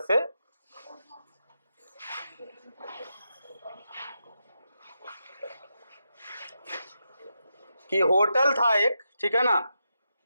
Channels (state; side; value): inverted; both; correlation -0.86